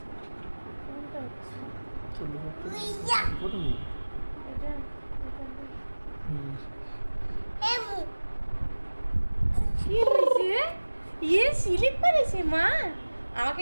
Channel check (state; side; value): inverted; both; correlation -1.00